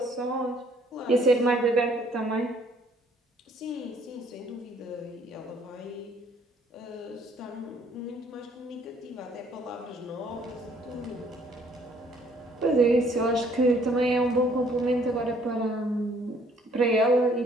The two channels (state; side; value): normal; both; correlation 0.62